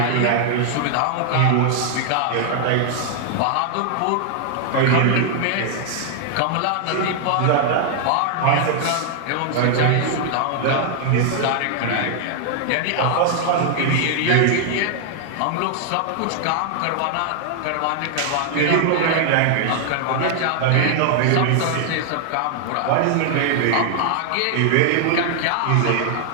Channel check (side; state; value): both; different; correlation 0.00